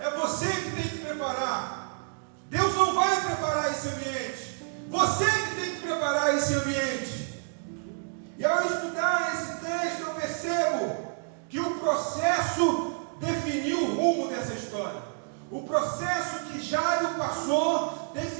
você que tem que preparar. Deus não vai preparar esse ambiente. Você que tem que preparar esse ambiente. E ao estudar esse texto, eu percebo que o processo definiu o rumo dessa história. O processo que Jairo passou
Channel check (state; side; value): silent; left; 59 dB below the other